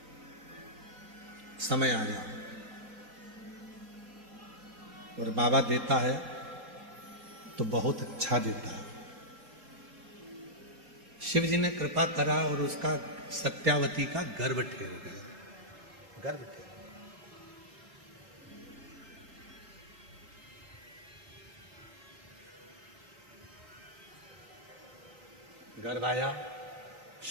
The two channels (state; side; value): late; left; 3.9 ms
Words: समय आया और बाबा देता है तो बहुत अच्छा देता है। शिव जी ने कृपा करा और उसका सत्यावती का गर्भ ठहर गया। गर्भ आया,